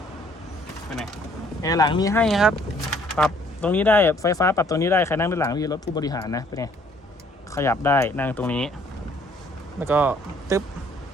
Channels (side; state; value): both; normal; correlation 0.61